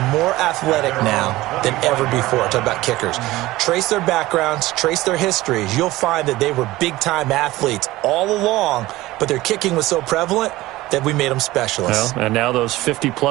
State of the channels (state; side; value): quieter; left; 18.0 dB